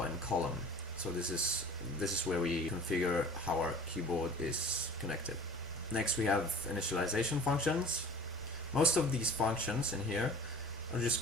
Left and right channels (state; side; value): normal; both; correlation 0.43